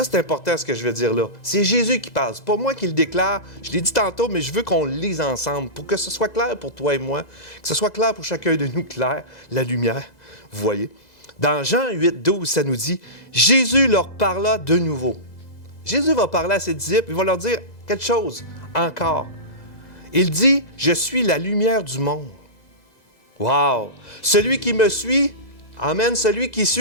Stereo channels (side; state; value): right; late; 2.0 ms